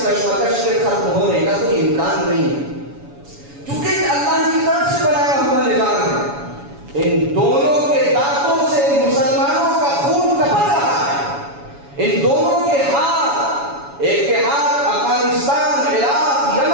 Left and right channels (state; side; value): late; left; 7.1 ms